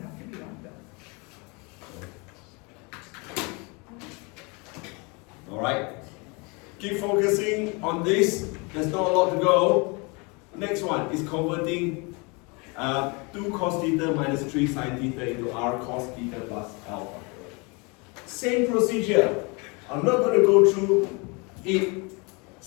Alright? Keep focusing on this. There's not a lot to go. Next one is converting 2 cos theta minus 3 sine theta into r cos theta plus alpha. Same procedure. I'm not going to go through it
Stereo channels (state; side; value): quieter; right; 29.8 dB